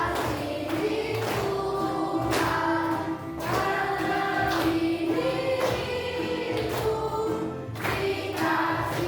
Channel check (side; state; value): both; identical; correlation 1.00